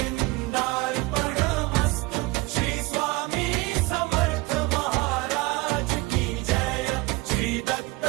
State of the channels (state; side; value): quieter; left; 23.0 dB